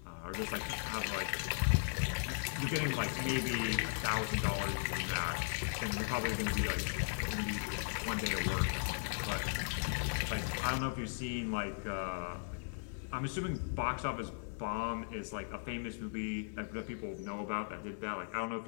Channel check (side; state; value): right; silent; digital silence